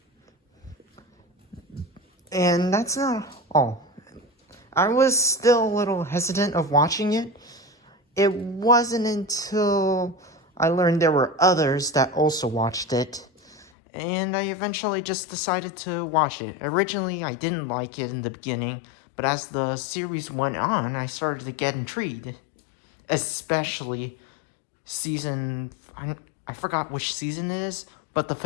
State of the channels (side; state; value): right; drops out; at 13.7 s